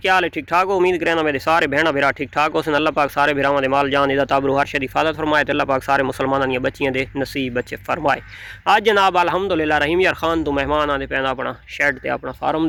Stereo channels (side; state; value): both; identical; correlation 1.00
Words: हाल है? ठीक ठाक हो? उम्मीद करना मेरे सारे भैन भरा ठीक ठाक हो। अल्लाह पाक सारे भरावां दे माल जान इदा ताबरू हर शरी हिफाजत फरमाए। अल्लाह पाक सारे मुसलमानां दी बच्चियां दे नसीब बच्चे फरमाए। आज जनाब अल्हम्दुलिल्लाह रहीम यार खान तो मेहमान आते पैदा अपना शैड ते अपना फार्म